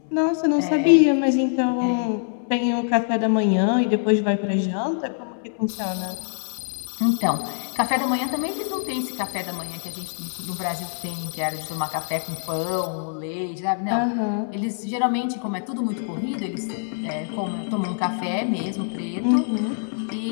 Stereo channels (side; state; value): right; silent; digital silence